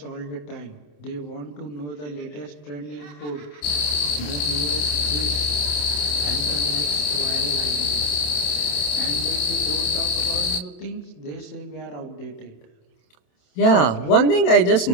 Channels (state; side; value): late; right; 27 ms